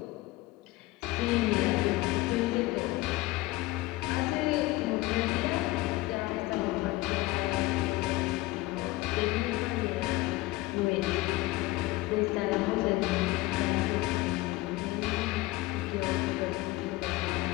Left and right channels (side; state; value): right; quieter; 19.2 dB